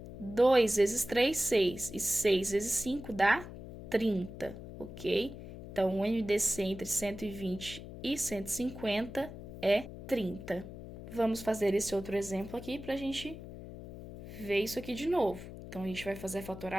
2 vezes 3, 6. E 6 vezes 5 dá 30, ok? Então, o MDC entre 120 e 150 é 30. Vamos fazer esse outro exemplo aqui para a gente ver isso aqui de novo. Então, a gente vai fazer a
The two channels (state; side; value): noise; left; hum, 12 dB below the sound